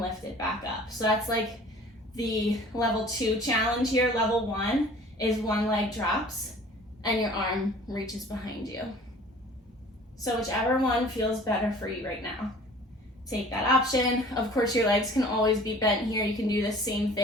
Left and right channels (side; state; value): both; normal; correlation 0.48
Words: it back up. So that's like the level 2 challenge here. Level 1 is one leg drops and your arm reaches behind you. So whichever one feels better for you right now, take that option. Of course, your legs can always be bent here. You can do the same